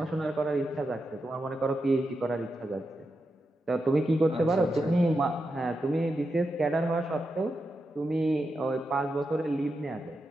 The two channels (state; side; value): normal; both; correlation 0.87